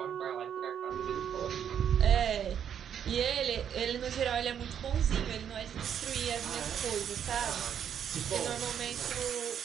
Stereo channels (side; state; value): left; quieter; 8.8 dB